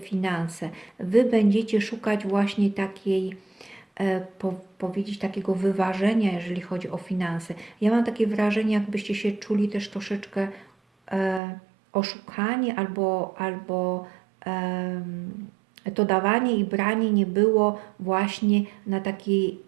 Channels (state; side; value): drops out; left; at 11.4 s